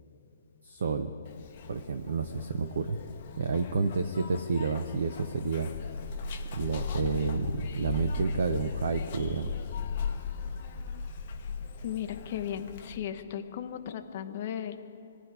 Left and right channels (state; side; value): inverted; both; correlation -0.67